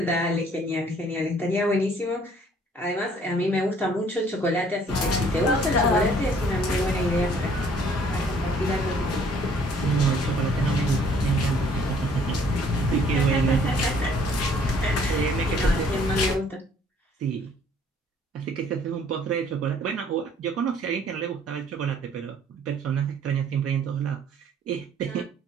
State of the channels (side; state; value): both; normal; correlation 0.59